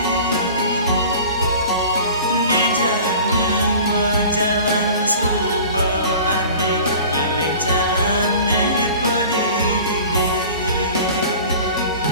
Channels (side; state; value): both; inverted; correlation -0.42